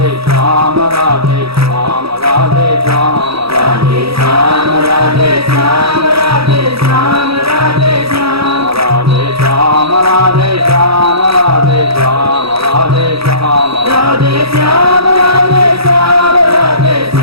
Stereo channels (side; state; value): left; late; 0.77 ms